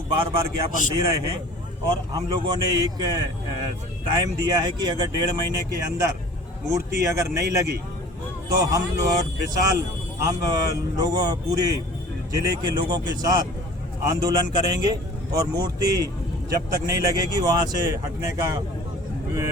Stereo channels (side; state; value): both; normal; correlation 0.46